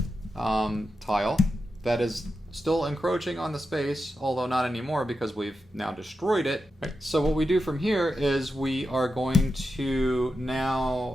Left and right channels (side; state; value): both; normal; correlation 0.89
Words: tile that is still encroaching on the space, although not anymore because we've now destroyed it. Right. So what we do from here is we are going to